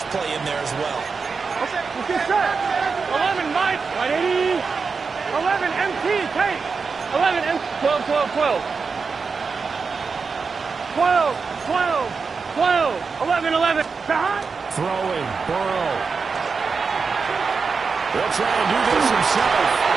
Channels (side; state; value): left; quieter; 5.0 dB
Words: play in there as well. Okay, let's get set. 11, Mike. Right 80. 11, MT. Take. 11, M. 12. 11. Behind. Throwing. Burrow. They'll try and do this himself.